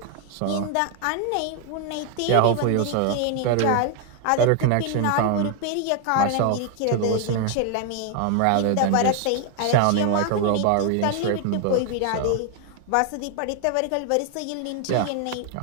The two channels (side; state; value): both; different; correlation 0.00